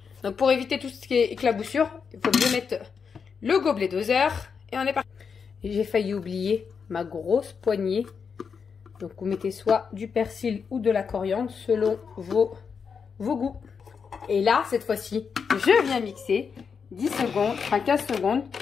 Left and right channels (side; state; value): right; quieter; 6.1 dB